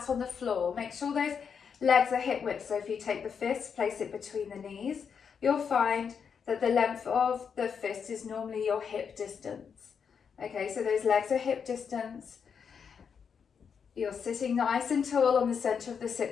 on the floor. Make sure those legs are hip width. So if you take the fist, place it between the knees, you'll find that the length of the fist is normally your hip distance. Okay, so those legs are hip distance. You're sitting nice and tall on the center of the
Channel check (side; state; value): right; quieter; 6.7 dB